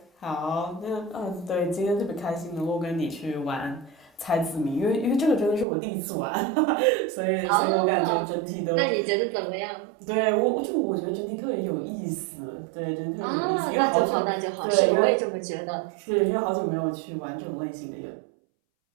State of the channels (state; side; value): drops out; left; at 5.7 s